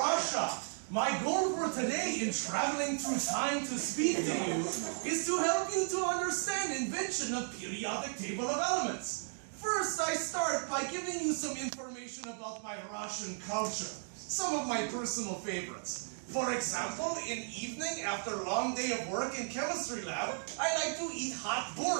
Russia. My goal for today in traveling through time to speak to you is to help you to understand invention of periodic table of elements. First, I start by giving you some information about my Russian culture, some of my personal favorites. For example, in evening after a long day of work in chemistry lab, I like to eat hot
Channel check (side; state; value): left; silent; digital silence